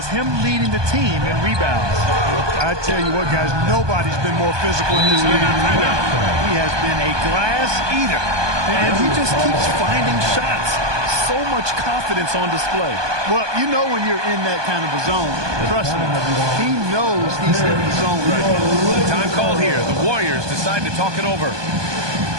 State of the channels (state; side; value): late; left; 1.2 ms